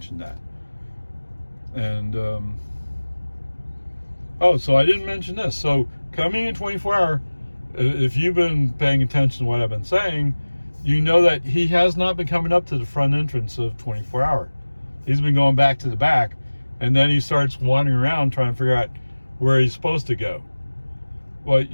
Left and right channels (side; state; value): both; inverted; correlation -1.00